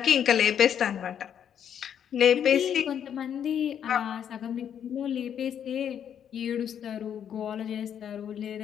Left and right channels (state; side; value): quieter; right; 8.9 dB